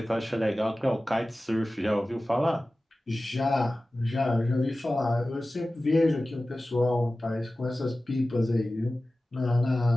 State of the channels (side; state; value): both; normal; correlation 0.96